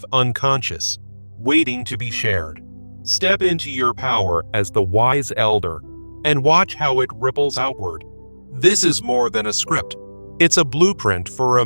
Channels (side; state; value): both; inverted; correlation -1.00